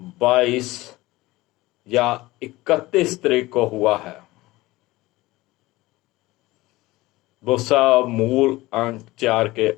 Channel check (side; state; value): right; quieter; 19.4 dB